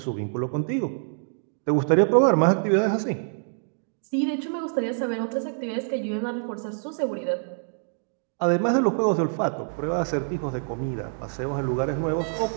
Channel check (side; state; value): left; silent; digital silence